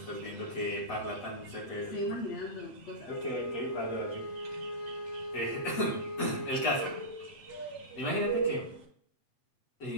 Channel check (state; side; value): late; right; 8.1 ms